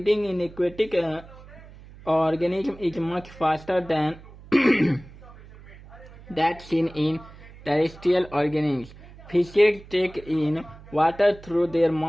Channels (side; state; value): right; noise; hum, 20 dB below the sound